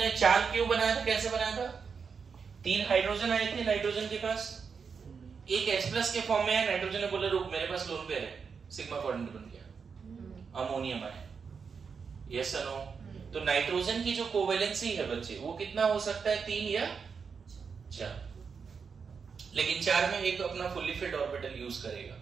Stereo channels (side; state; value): left; quieter; 5.8 dB